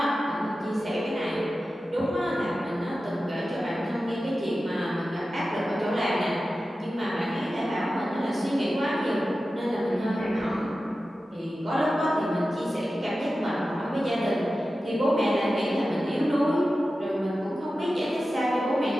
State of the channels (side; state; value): both; normal; correlation 0.94